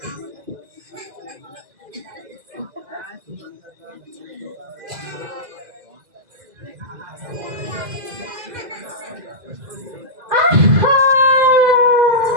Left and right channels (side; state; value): left; late; 2.0 ms